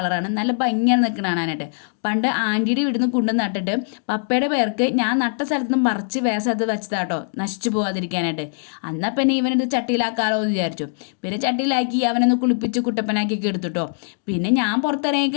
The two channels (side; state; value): right; silent; digital silence